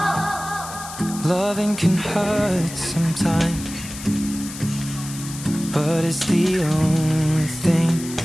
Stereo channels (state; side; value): noise; left; hiss, 12 dB below the sound